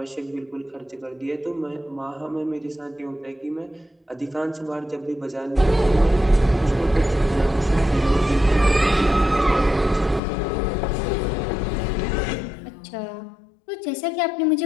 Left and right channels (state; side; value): drops out; right; at 10.2 s